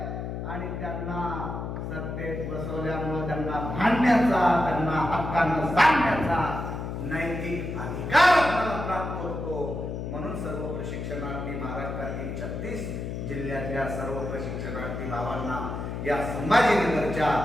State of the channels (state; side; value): noise; left; hum, 5 dB below the sound